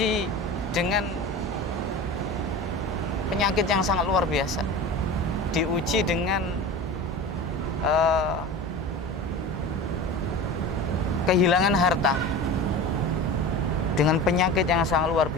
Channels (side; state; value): both; normal; correlation 0.32